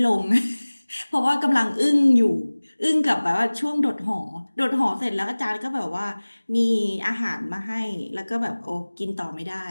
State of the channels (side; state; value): both; inverted; correlation -1.00